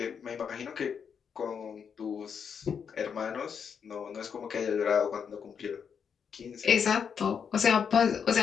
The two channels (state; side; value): quieter; right; 6.9 dB